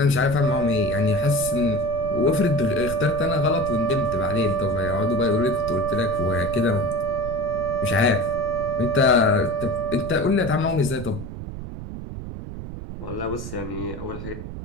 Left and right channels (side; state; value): right; noise; rumble, 9 dB below the sound